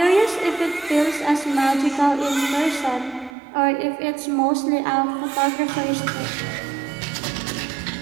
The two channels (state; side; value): drops out; left; at 3.3 s